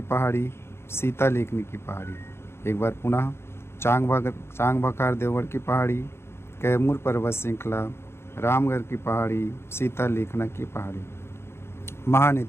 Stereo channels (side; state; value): right; late; 0.12 ms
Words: सीता लेखनी की पहाड़ी। एक बार पुनः चांग बखार देवगढ़ की पहाड़ी, कैमूर पर्वत श्रृंखला, रामगढ़ की पहाड़ी, सीता लेखना की पहाड़ी।